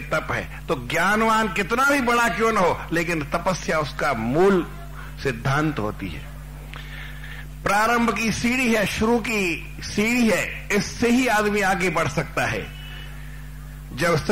तप है। तो ज्ञानवान कितना भी बड़ा क्यों न हो, लेकिन तपस्या उसका मूल सिद्धांत होती है। प्रारंभ की सीढ़ी है, शुरू की सीढ़ी है। इससे ही आदमी आगे बढ़ सकता है। जब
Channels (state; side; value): identical; both; correlation 1.00